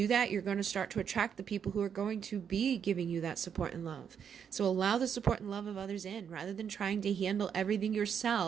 that, you're going to start to attract the people who are going to be giving you that support and love. So allow the support and love of others in, rather than trying to handle everything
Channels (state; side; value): quieter; left; 7.7 dB